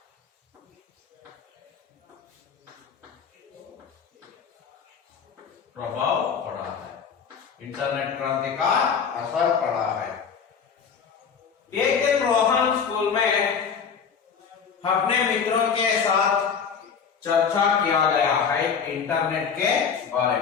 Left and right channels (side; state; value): right; quieter; 6.6 dB